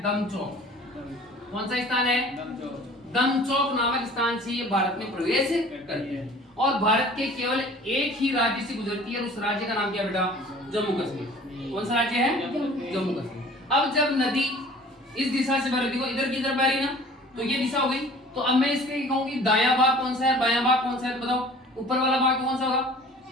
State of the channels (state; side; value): normal; both; correlation 0.47